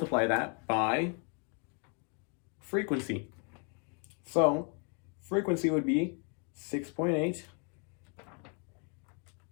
that by frequency. So frequency would be 6.8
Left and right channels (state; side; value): quieter; right; 38.1 dB